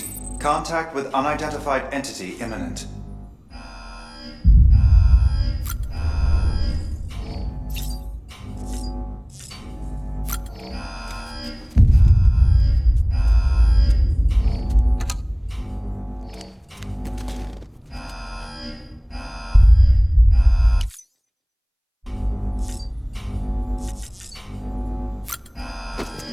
contact with unidentified entity imminent.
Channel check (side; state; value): both; identical; correlation 1.00